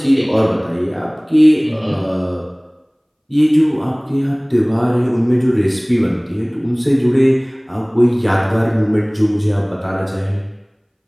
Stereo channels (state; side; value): identical; both; correlation 1.00